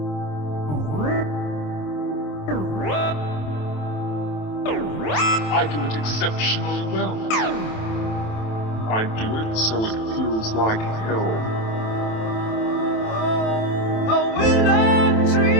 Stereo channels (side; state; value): right; late; 27 ms